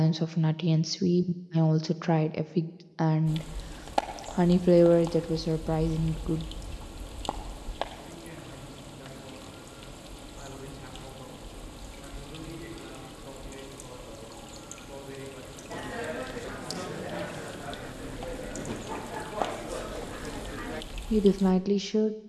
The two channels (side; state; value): both; identical; correlation 1.00